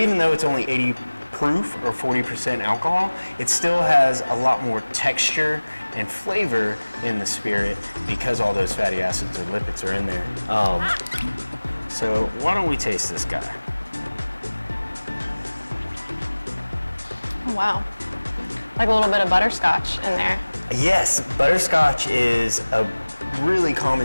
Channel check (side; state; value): both; inverted; correlation -1.00